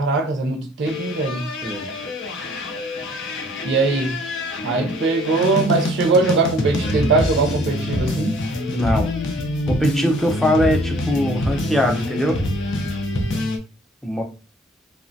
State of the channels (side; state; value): both; normal; correlation 0.56